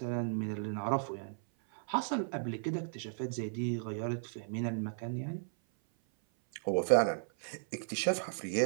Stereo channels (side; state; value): left; silent; 54 dB below the other